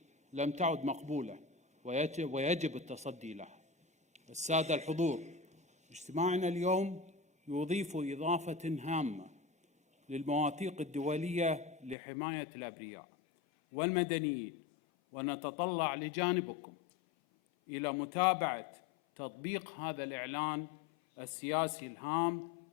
لم تعد مقبولة ويجب التصدي لها. السادة الحضور، اجتماعنا اليوم يضيف إضافة هامة للمواثيق الدولية لحماية الأبرياء والمدنيين، ونتطلع لجانبكم إلى متابعة تطبيق هذا الإعلان السياسي الهام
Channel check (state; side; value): drops out; right; at 12.0 s